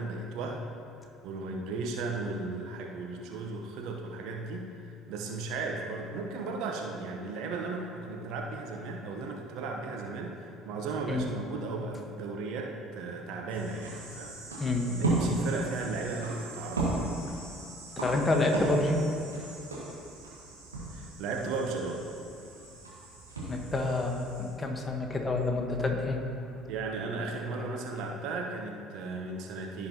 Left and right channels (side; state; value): both; normal; correlation 0.51